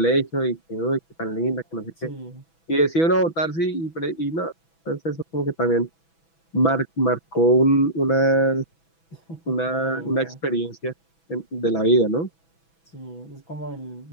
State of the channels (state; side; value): late; right; 6.1 ms